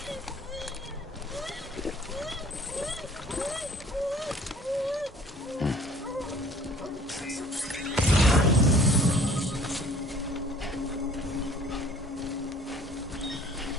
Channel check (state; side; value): normal; both; correlation 0.52